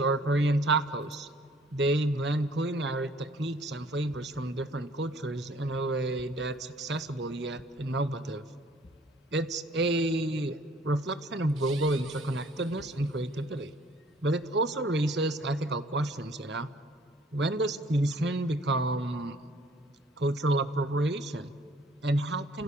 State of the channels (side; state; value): both; normal; correlation 0.57